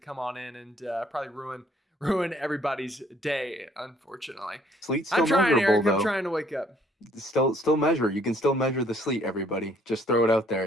come on in and probably ruin everybody's day. Unfortunately, Sleet's I'm still trying, measurable, Eric. I'm though. trying to wake up. Still measure. You can still measure the sleet, everybody. Just throw it out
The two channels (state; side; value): normal; both; correlation 0.63